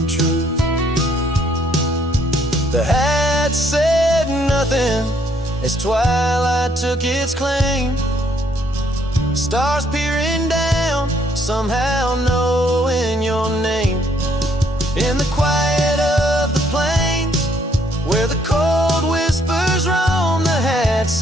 truth. The hat said nothing as twilight took its claim. Stars peering down, somehow knowing your name. In the quiet of the plains, where the cold whispers roam, the hat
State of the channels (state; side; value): normal; both; correlation 0.68